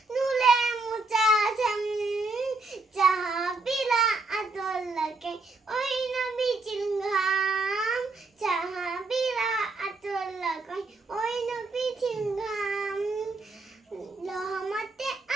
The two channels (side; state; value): left; quieter; 3.4 dB